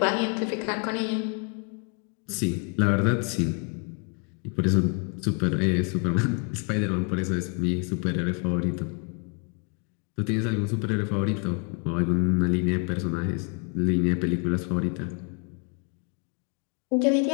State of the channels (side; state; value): right; quieter; 37.0 dB